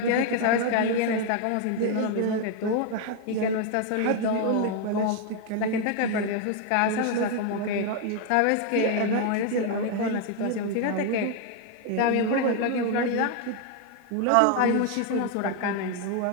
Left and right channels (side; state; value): both; different; correlation 0.00